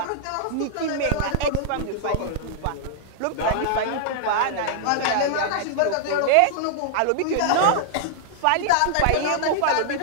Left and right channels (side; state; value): both; different; correlation -0.01